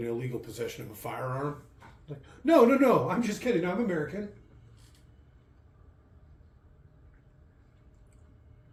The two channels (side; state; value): both; identical; correlation 1.00